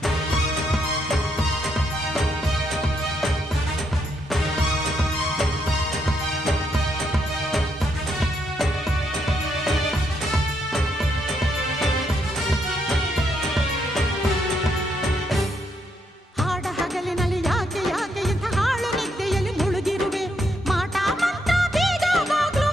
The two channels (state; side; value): normal; both; correlation 0.77